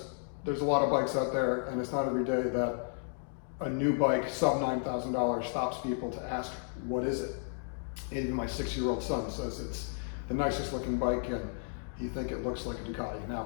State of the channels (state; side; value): silent; right; 56 dB below the other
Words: there's a lot of bikes out there and it's not every day that a new bike sub $9,000 stops people to ask, what is it? Even my 6-year-old son says it's the nicest looking bike and he thinks it looks like a Ducati.